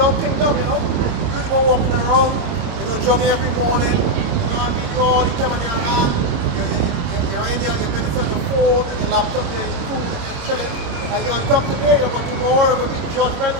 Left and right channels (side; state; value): left; late; 26 ms